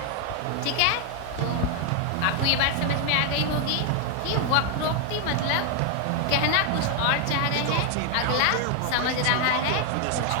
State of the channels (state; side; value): different; both; correlation 0.00